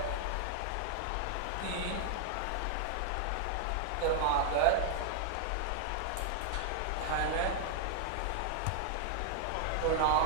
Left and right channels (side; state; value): both; different; correlation 0.00